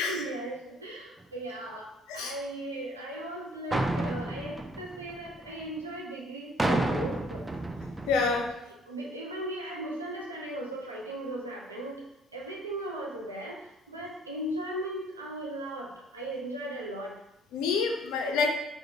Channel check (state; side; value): normal; both; correlation 0.57